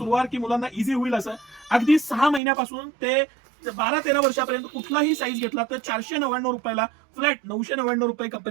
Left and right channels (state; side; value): drops out; left; at 2.4 s